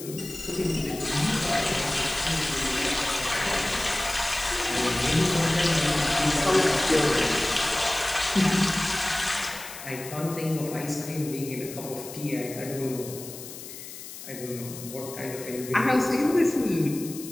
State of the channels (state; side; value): noise; left; hiss, 13 dB below the sound